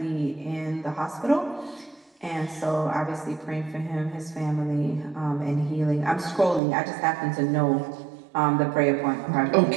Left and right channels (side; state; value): left; drops out; at 6.6 s